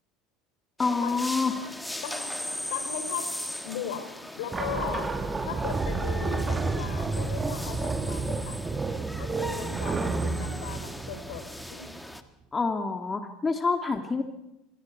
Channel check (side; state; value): both; normal; correlation 0.74